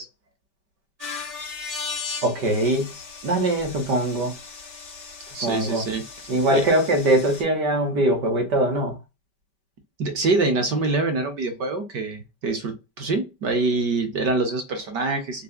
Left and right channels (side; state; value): left; late; 5.1 ms